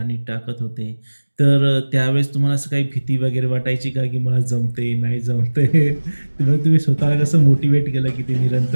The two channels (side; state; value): both; inverted; correlation -1.00